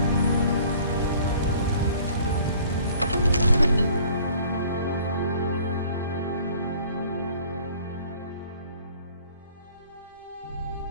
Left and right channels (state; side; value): inverted; both; correlation -0.53